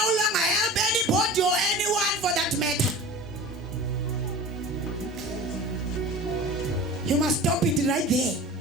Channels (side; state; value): both; normal; correlation 0.37